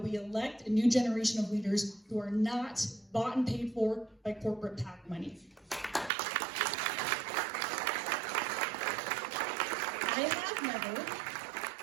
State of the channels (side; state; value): left; drops out; at 6.1 s